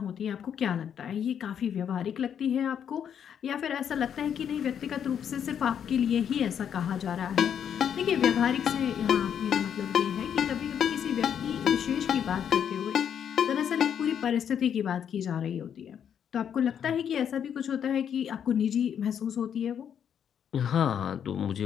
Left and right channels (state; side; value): quieter; right; 8.5 dB